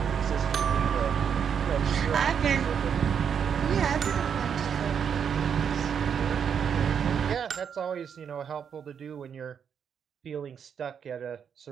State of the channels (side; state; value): left; quieter; 7.5 dB